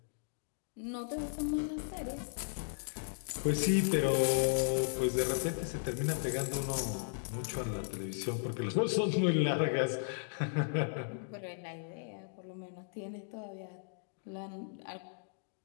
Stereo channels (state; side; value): silent; right; digital silence